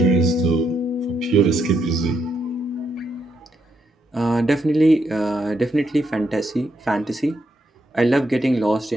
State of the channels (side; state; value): both; normal; correlation 0.79